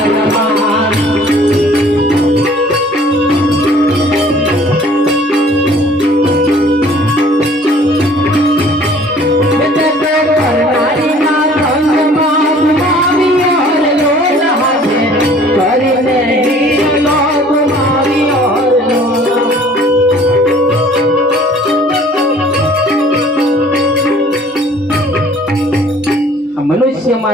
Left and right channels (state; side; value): normal; both; correlation 0.52